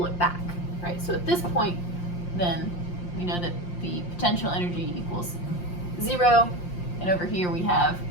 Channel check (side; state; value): right; late; 5.7 ms